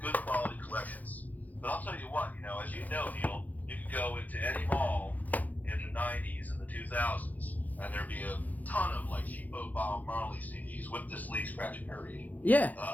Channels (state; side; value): late; right; 0.080 ms